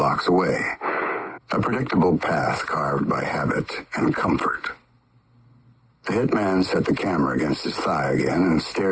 away. A predictable path carved by habit and comfort. The hitman set the camera against his thigh again and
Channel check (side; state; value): both; identical; correlation 1.00